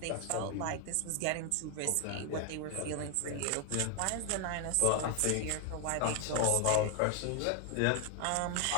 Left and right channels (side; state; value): both; different; correlation 0.00